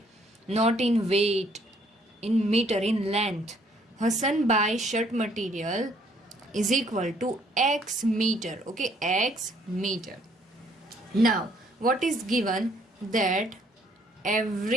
not in weight, in meter, in length. Hassan buys shirt material is equal to X meter, okay, X meter. Now what is given, that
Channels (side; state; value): both; normal; correlation 0.64